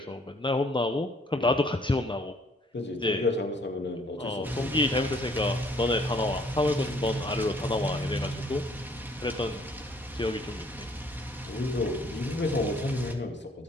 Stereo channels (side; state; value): both; normal; correlation 0.61